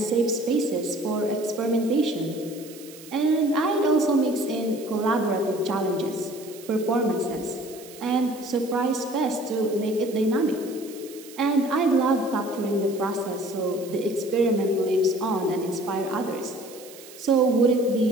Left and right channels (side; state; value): right; noise; hiss, 19 dB below the sound